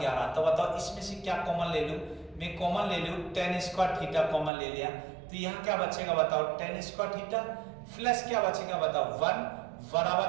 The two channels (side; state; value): left; drops out; at 4.5 s